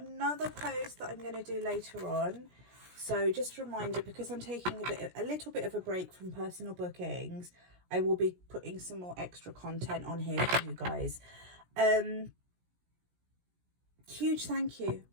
another post that I'm going to do later on, so just a reminder, because I'm taking a little bit of a break from personal bookings, I will be putting some more extra content on here for you guys. Huge thank you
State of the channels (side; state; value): left; late; 17 ms